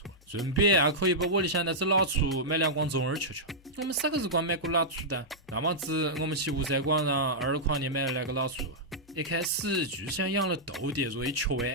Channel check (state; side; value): normal; both; correlation -0.10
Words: 顺便也可以把屋里向那只老鼠买2光中耳吃吃。我们啥个时光买过老鼠的？那么子我们去吴山广场20块钱买了2个老鼠，一开始就想养了豆的作为吃